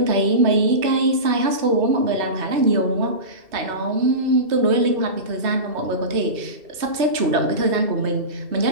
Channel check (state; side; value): late; left; 2.7 ms